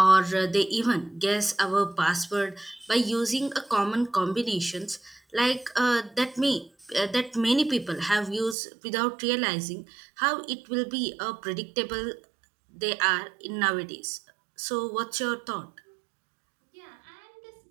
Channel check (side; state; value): left; drops out; at 8.6 s